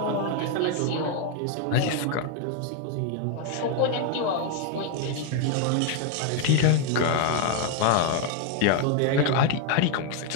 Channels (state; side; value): different; both; correlation 0.01